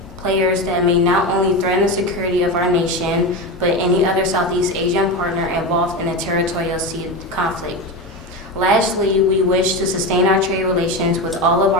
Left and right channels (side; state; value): both; normal; correlation 0.20